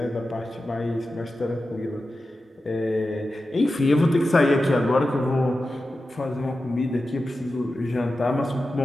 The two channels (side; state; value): both; normal; correlation 0.92